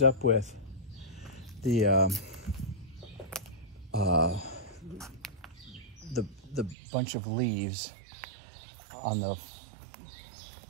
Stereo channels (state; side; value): drops out; left; at 6.8 s